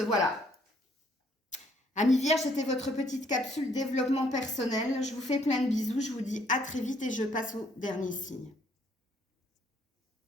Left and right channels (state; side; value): normal; both; correlation 0.66